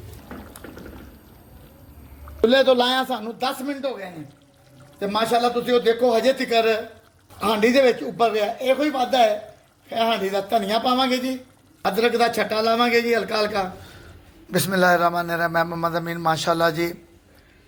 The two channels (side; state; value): both; identical; correlation 1.00